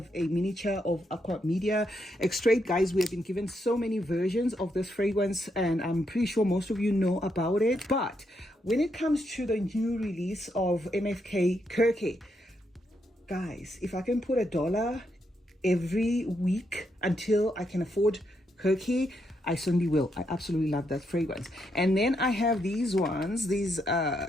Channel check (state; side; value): normal; both; correlation 0.79